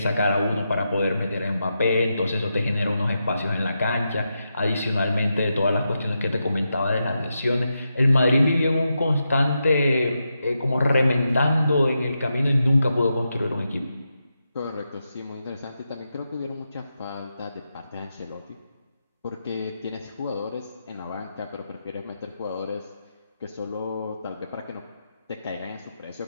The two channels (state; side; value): inverted; both; correlation -0.86